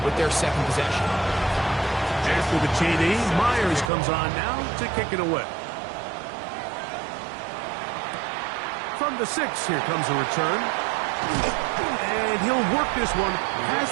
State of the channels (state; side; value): drops out; left; at 3.9 s